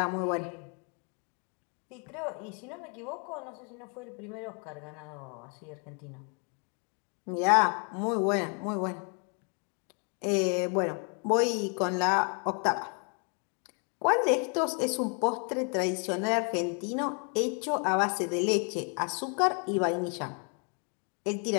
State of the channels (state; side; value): quieter; right; 38.0 dB